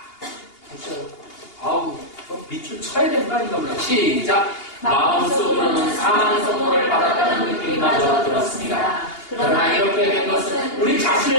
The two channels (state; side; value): late; right; 2.8 ms